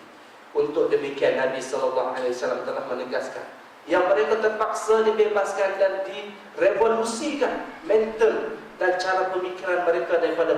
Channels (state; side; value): identical; both; correlation 1.00